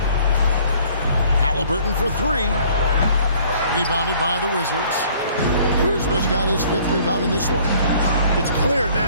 Halliburton for 3. Rebounded by the Wizards. Kuzma's got his 5th rebound in this one. It's clear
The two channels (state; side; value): inverted; both; correlation -0.57